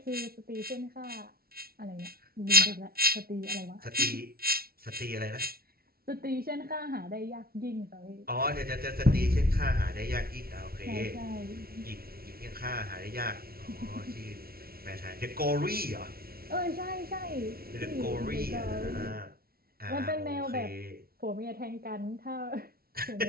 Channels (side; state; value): left; late; 0.44 ms